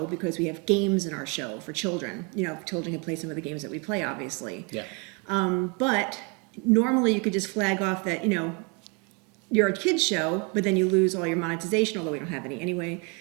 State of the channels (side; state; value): left; quieter; 32.0 dB